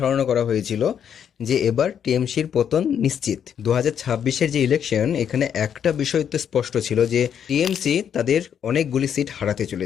করা হয়েছিল যে এবার টিএমসির পতন নিশ্চিত। 2026-এর যে ইলেকশন, এখানে একটা বিষয় তো স্পষ্ট ছিল যে টিএমসি তাদের অনেকগুলি সিট হারাতে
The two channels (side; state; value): right; quieter; 8.5 dB